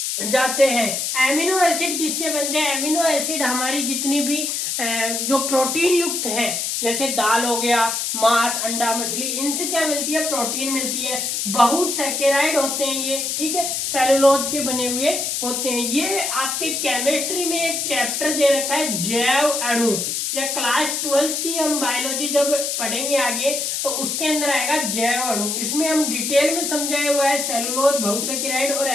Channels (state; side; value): noise; left; hiss, 1 dB below the sound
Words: जाते हैं। एमिनो एसिड किससे बनते हैं? एमिनो एसिड हमारी जितनी भी जो प्रोटीन युक्त है, जैसे दाल हो गया, मांस, अंडा, मछली, इनसे क्या मिलती है? प्रोटीन मिलती है। बहुसैकराइड होते हैं ये, ठीक है, सेलुलोज के बने हुए होते हैं। ये आपके केमिस्ट्री में एक चैप्टर दे रखा है जैव अणु, या क्लास 12 की हम बायोलॉजी जब पढ़ेंगे आगे तो उसके अंदर आएगा जैव अणु। इसमें हम डिटेल में समझाया हुआ है सेलुलोज, बहुसैकराइड और